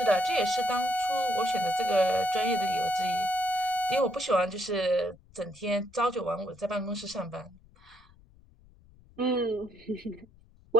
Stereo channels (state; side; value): noise; left; rumble, 27 dB below the sound